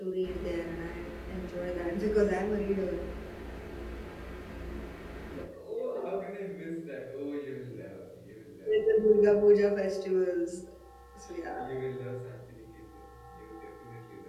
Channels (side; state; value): both; identical; correlation 1.00